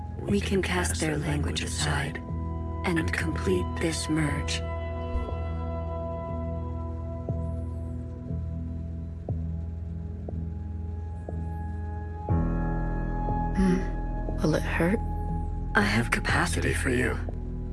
We can cast their language aside and complete this merge. Will it hurt? I have capacity for you.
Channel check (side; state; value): both; identical; correlation 1.00